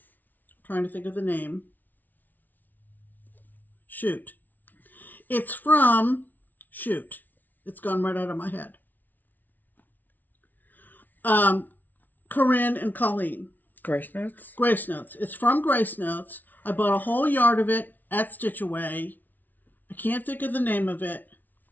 trying to think of the name. Shoot. It's from Shoot. It's gone right out of my head. Corinne and Colleen. Grace Notes? Grace Notes. It's from Grace Notes. I bought a whole yard of it at Stitch Away. I can't think of the name of it.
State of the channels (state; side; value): late; right; 0.083 ms